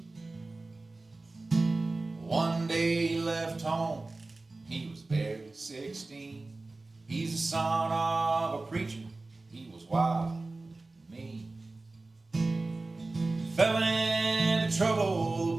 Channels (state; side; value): quieter; left; 3.3 dB